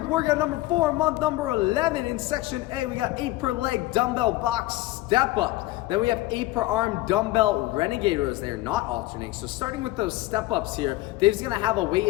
workout number 4, month number 11. In section A, we got 8 per leg dumbbell box step-ups. Then we have 8 per arm dumbbell renegade rows. They're not alternating. So starting with those step-ups here, Dave's gonna have a weight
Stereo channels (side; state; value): right; quieter; 18.2 dB